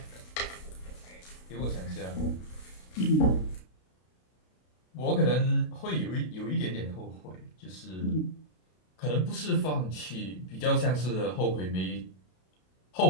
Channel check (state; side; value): late; right; 32 ms